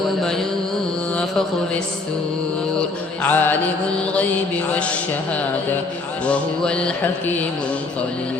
ينفخ في السور عالم الغيب والشهادة وهو الحكيم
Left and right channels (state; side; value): quieter; right; 3.5 dB